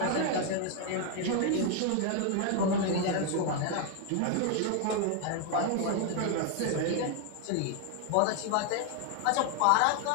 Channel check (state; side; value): different; both; correlation 0.01